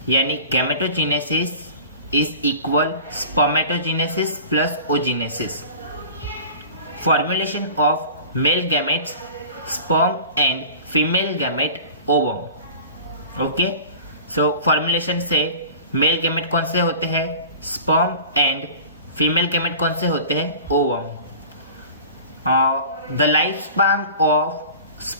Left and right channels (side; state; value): both; inverted; correlation -0.40